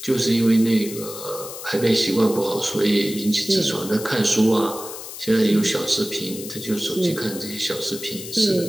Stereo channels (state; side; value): noise; left; hiss, 11 dB below the sound